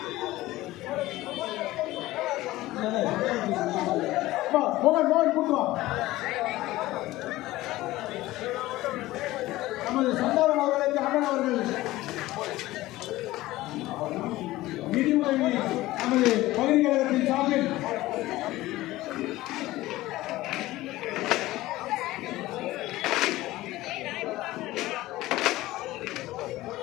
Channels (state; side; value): quieter; right; 17.4 dB